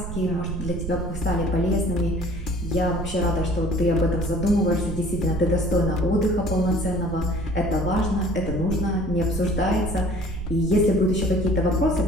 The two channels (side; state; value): right; noise; rumble, 7 dB below the sound